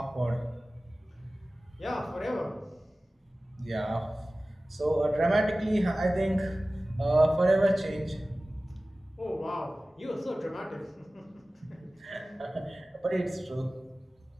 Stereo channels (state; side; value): normal; both; correlation 0.97